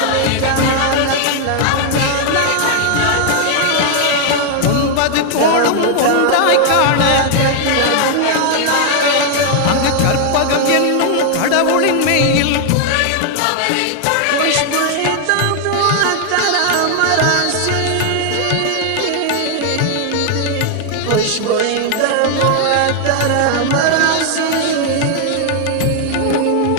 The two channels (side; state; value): both; different; correlation 0.00